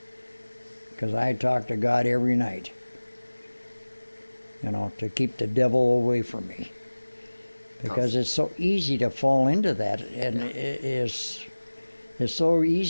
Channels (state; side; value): inverted; both; correlation -1.00